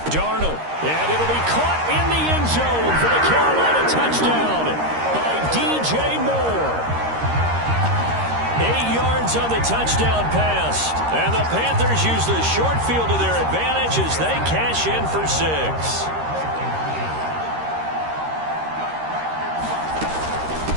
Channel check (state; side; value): late; left; 13 ms